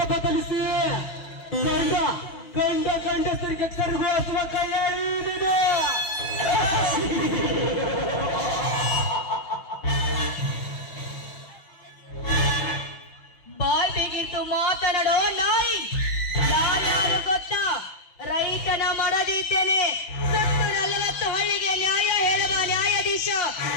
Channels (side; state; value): right; late; 6.0 ms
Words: ಬದಲಿಸಿ ಗಂಡಸರಿಗೆ ಕರಗುವ ಕೈಯ ಬಾಯ್ ಬೇಗಿತ್ತು ಮಾತನಾಡೋ ನಾಯಿ. ನಾನ್ಯಾರು ಗೊತ್ತಾ? ರೈತನ ಮಾಡದಿದ್ದೇನೆ. ಸತ್ತು 40 ಹಳ್ಳಿಗೆ ನ್ಯಾಯ ಹೇಳುವ ನ್ಯಾಯಾಧೀಶ.